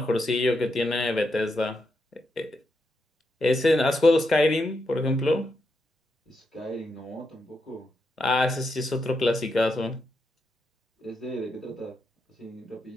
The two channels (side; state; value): both; normal; correlation 0.83